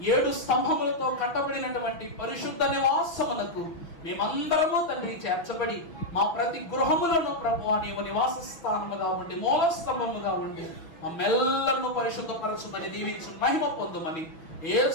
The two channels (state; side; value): late; right; 6.0 ms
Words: 7 స్తంభములతో కట్టబడినటువంటి పరిశుద్ధ నివాసమునకు మేమందరము తండ్రి చేర్చబడి మా ప్రతి గృహములను ప్రభువా నీవు నివాస స్థానముగా ఉండి, మూల స్తంభముగా ఉండి మమ్మెల్లరూ పరిశుద్ధపరచుమని దీవించు మహిమ పొందుమని